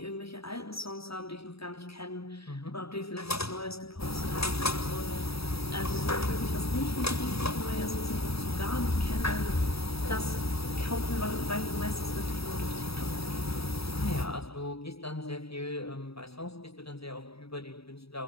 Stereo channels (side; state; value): right; late; 0.77 ms